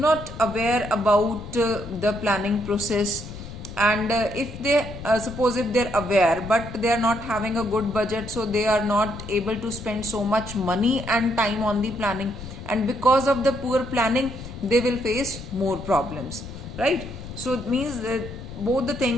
aware about the planning process. And if they suppose if they're aware, but they are not having a good budget, so they are not able to spend so much money and time on the planning, and because of the poor planning they will face more problems, right? So it means that both the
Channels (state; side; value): noise; left; rumble, 12 dB below the sound